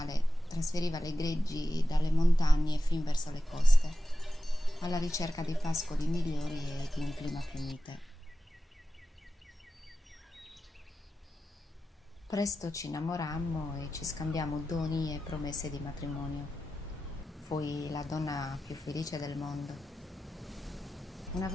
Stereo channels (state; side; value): normal; both; correlation 0.92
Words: trasferiva le greggi dalle montagne fin verso le coste, alla ricerca di pascoli migliori e di un clima più mite. Presto ci innamorammo e ci scambiammo doni e promesse di matrimonio. Fui la donna più felice del mondo. Una